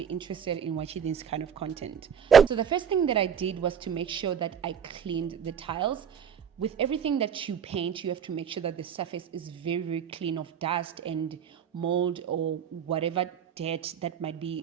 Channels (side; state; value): left; quieter; 7.6 dB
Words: interested in watching this kind of content. So the first thing that I did was to make sure that I cleaned the tiles. With everything that you paint, you have to make sure that the surface is very clean of dust and mold or whatever dirt that might